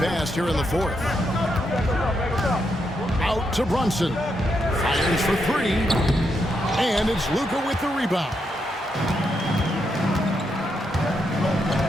here in the fourth. Out to Brunson. Fires for three. And it's Luka with the rebound.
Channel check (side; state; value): both; normal; correlation 0.81